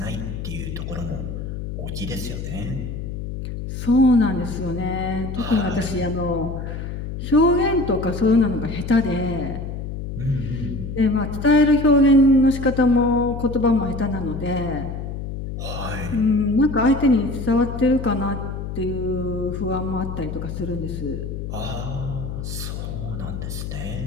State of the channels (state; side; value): noise; left; hum, 6 dB below the sound